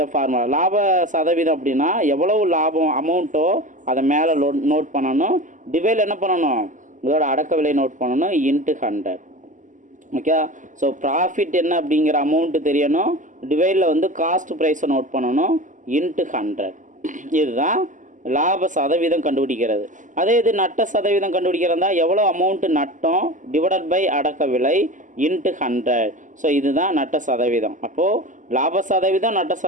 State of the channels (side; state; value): left; late; 0.37 ms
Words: ஃபார்முலா லாப சதவீதம் அப்படின்னா எவ்வளவு லாபம் அமௌண்ட்டோ அதை மேலே நோட் பண்ணணும். டிவைடில் என்ன பண்ணணும்? இதோட அடக்க விலை நோட் பண்ணணும் இன்ட்டு 100. ஓகே. ஸோ ப்ராஃபிட் என்ன அப்படிங்கிற அமௌண்ட்டு தெரியணும். டிவைடில் வந்து காஸ்ட் ப்ரைஸை நோட் பண்ணணும் இன்ட்டு 100. இதுதான் லாப சதவீதம் கண்டுபிடிக்கிறது. அதே இது நட்ட சதவீதம் கண்டுபிடிக்கிறதா எவ்வளோ அமௌண்ட்டு நட்டம் டிவைடட் பை அடக்க விலை இன்ட்டு 100. ஸோ இதுதான் நட்ட சதவீதம். அப்போது லாப சதவீதம் நட்ட